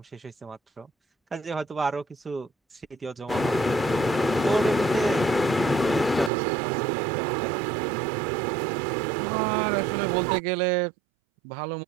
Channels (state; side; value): drops out; left; at 6.3 s